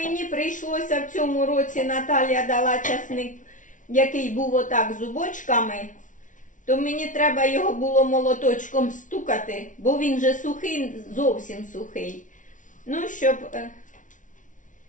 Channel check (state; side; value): late; right; 0.37 ms